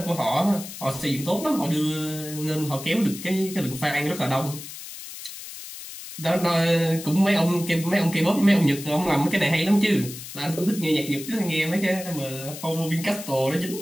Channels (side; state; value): left; noise; hiss, 12 dB below the sound